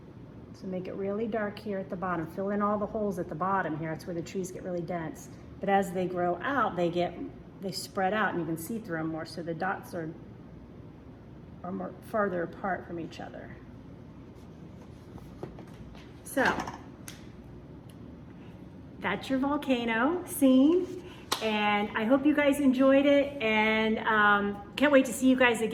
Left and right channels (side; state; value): both; identical; correlation 1.00